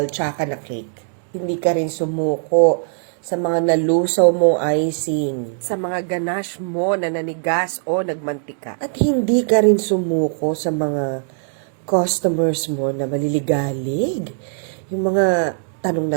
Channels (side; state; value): left; silent; digital silence